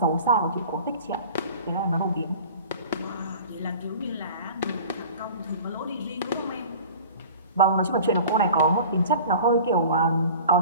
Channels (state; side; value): inverted; both; correlation -0.42